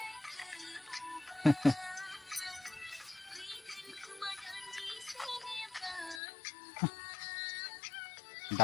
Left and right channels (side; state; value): right; drops out; at 6.2 s